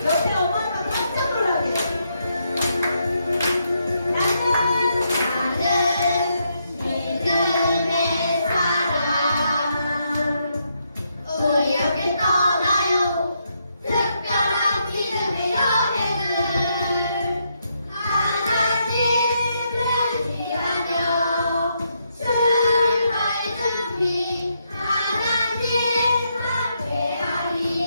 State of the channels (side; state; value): both; inverted; correlation -0.78